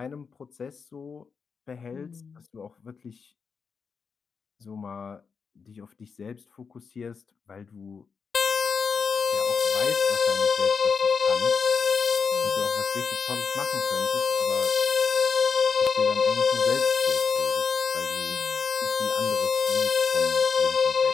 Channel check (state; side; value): quieter; right; 5.7 dB